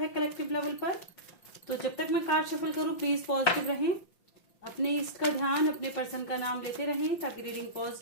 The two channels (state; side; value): late; right; 5.7 ms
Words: कलेक्टिव लेवल पर। तो जब तक मैं कार्ड शफल करूँ प्लीज पॉजिटिव रहें, अपने इष्ट का ध्यान, अपने पर्सन का नाम लेते रहें ताकि रीडिंग